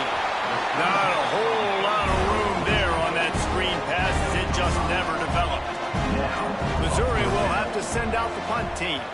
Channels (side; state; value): both; identical; correlation 1.00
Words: Not a whole lot of room there on that screen pass, as it just never developed. Missouri will have to send out the punt team.